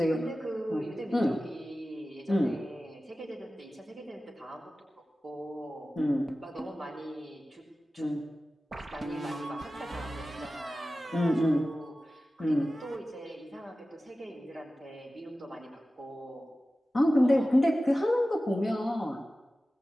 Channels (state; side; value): normal; both; correlation 0.95